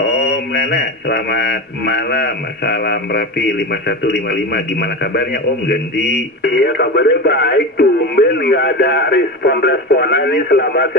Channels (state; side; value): normal; both; correlation 0.23